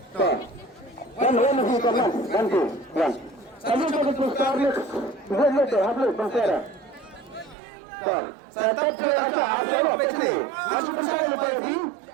Kan masih kaman, bantu. Kamu betul sekali. Boleh tu, habis bangsa. Tetap cuaca ada begini. Masuk saya lagi.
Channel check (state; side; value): drops out; left; at 7.6 s